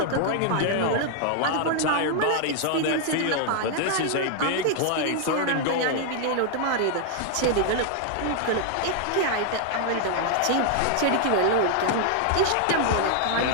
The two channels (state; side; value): different; both; correlation 0.00